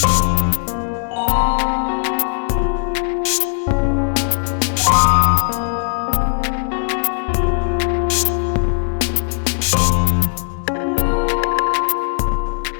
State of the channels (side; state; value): right; silent; 67 dB below the other